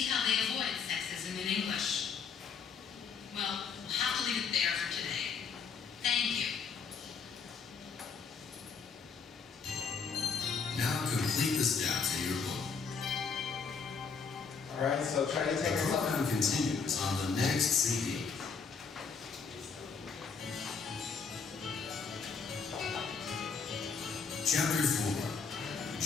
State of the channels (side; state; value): right; quieter; 5.5 dB